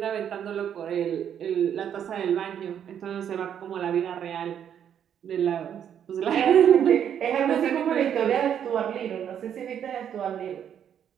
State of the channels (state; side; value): quieter; left; 9.0 dB